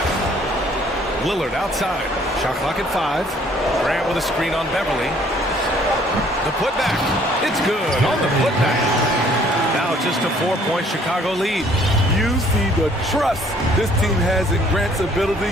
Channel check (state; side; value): normal; both; correlation 0.60